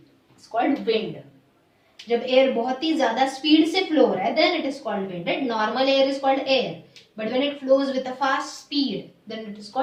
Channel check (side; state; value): both; identical; correlation 1.00